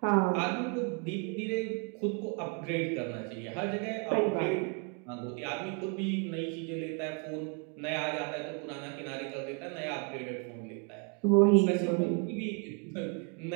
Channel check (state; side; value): quieter; left; 37.4 dB